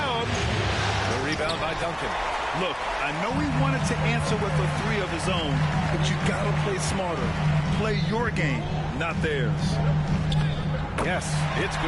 The rebound by Duncan. Look, I know he wanted to answer with a 3 of his own, but you got to play smarter. Play your game, not theirs. Yes, it's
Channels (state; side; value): identical; both; correlation 1.00